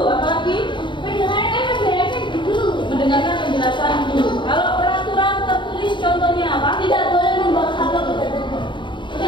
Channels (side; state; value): right; late; 0.23 ms